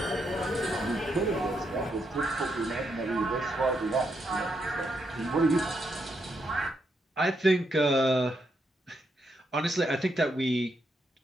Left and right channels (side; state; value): both; normal; correlation 0.80